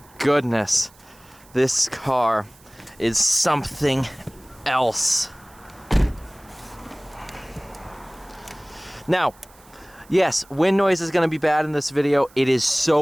goodness. This car is something else. Now, yes, wind noise is going to be bad in this video. It is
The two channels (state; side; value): noise; right; hiss, 27 dB below the sound